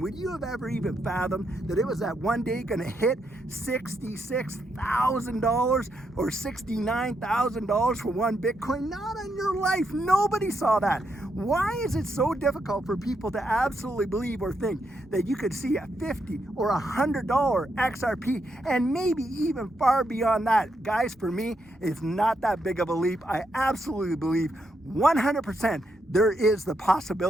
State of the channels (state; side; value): normal; both; correlation 0.80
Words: would you have ever even fathomed that it was that one day going to hit $66,000 or $69,000 for one Bitcoin? Not in your life. Nobody saw that. Why is it so difficult for people to absolutely believe or think that you could see a $50 or $100 XRP and maybe even far beyond that? Guys, for me, it's not that big of a leap. I absolutely believe 100% there is the